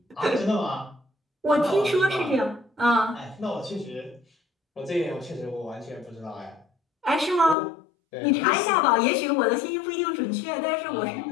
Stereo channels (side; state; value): right; drops out; at 7.6 s